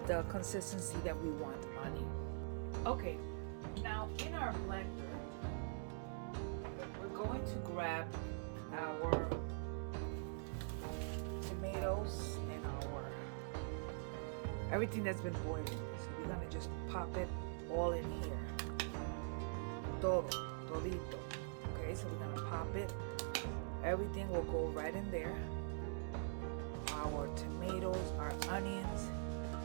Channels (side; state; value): left; silent; digital silence